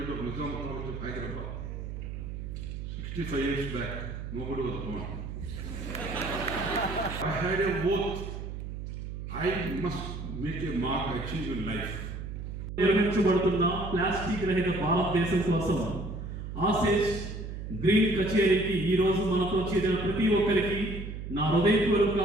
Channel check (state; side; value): noise; right; hum, 7 dB below the sound